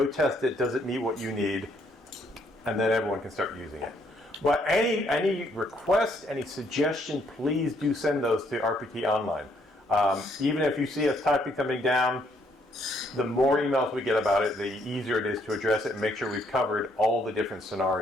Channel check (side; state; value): both; normal; correlation 0.70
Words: test it, does it meet what you need, and then everyone can start using it. But any request, any suggestion, please do send those to RPT Online. Even if you see us typing something down, the more emails we get about it, the easier it is to address it and make sure we've covered all the different